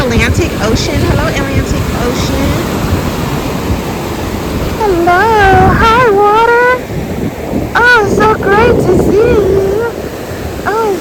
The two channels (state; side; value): identical; both; correlation 1.00